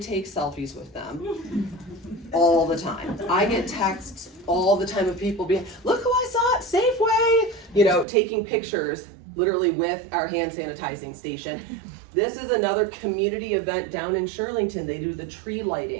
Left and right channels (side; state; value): left; drops out; at 8.1 s